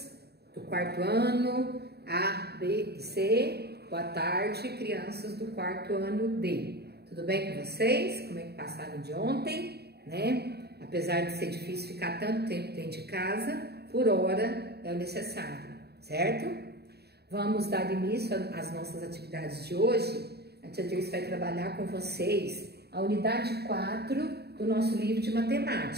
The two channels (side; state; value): left; late; 0.47 ms